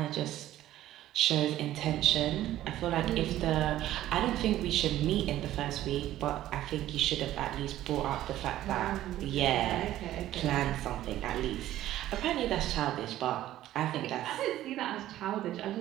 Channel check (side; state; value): left; quieter; 13.7 dB